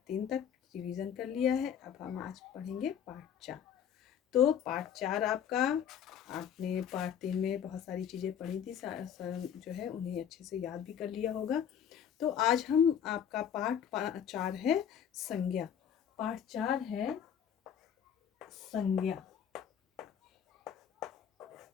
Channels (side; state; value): right; quieter; 8.7 dB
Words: 3 तक रिवीजन कर लिया है। अब हम आज पढ़ेंगे पार्ट 4। तो पार्ट 4 आपका, आपने पार्ट 3 में बहुत सारी चीज़ें पढ़ी थी, जो है उन्हें अच्छे से याद भी कर लिया होगा। तो आज हम आपका पार्ट 4 है संज्ञा। पार्ट 4 है संज्ञा।